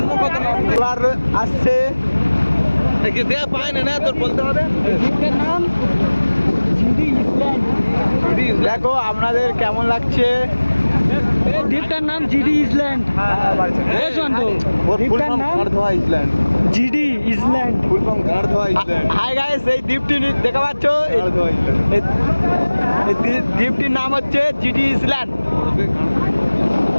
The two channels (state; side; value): inverted; both; correlation -1.00